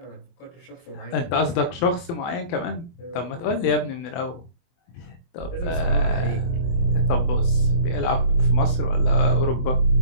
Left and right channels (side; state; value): right; late; 24 ms